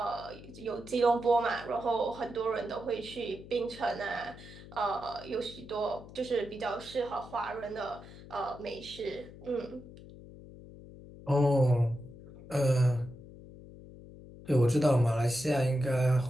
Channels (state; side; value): noise; left; hum, 17 dB below the sound